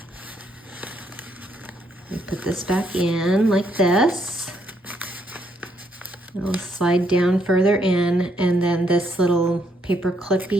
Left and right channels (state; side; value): normal; both; correlation 0.73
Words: I put this back in like this. It'll slide down further in, and then this little paper